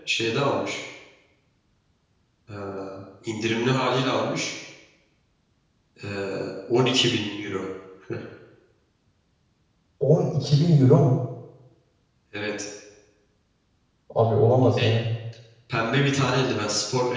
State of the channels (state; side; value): identical; both; correlation 1.00